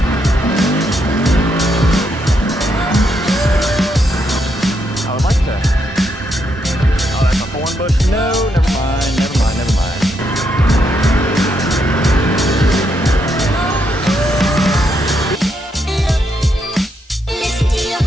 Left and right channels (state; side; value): normal; both; correlation 0.78